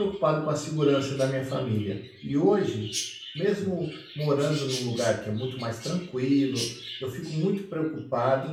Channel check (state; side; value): identical; both; correlation 1.00